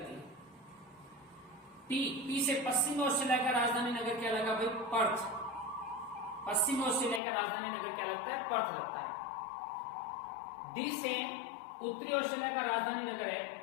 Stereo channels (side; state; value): right; drops out; at 7.2 s